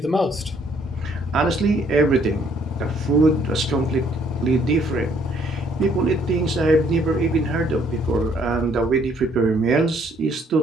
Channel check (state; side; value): normal; both; correlation 0.65